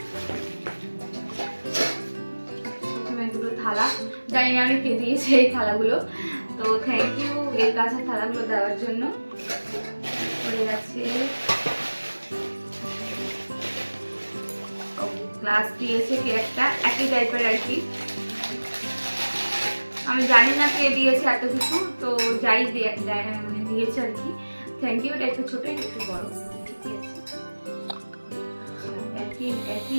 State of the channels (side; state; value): both; inverted; correlation -1.00